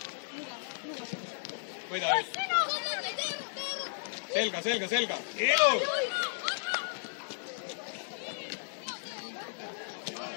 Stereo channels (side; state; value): right; silent; 55 dB below the other